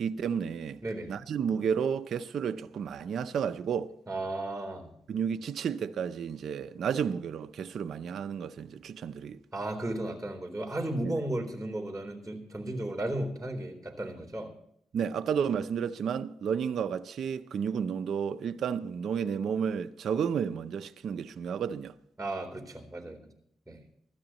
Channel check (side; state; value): left; quieter; 5.5 dB